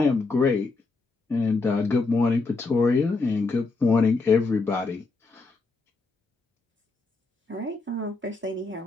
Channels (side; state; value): right; quieter; 3.7 dB